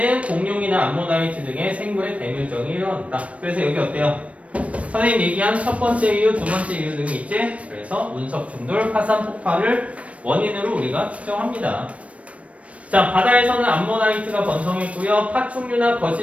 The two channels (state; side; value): late; left; 0.064 ms